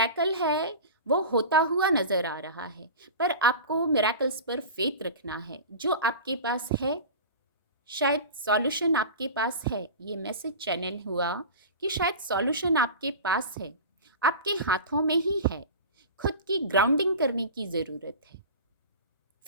है वो होता हुआ नज़र आ रहा है। पर आपको मिरेकल्स पर फेथ रखना है। जो आपके पास है, शायद सॉल्यूशन आपके पास है। ये मैसेज चैनल हुआ कि शायद सॉल्यूशन आपके पास है, आपके हाथों में ही है। खुद की ग्राउंडिंग करने की ज़रूरत है।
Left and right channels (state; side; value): inverted; both; correlation -0.33